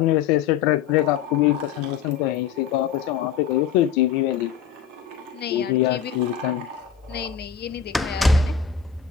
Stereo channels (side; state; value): right; quieter; 8.0 dB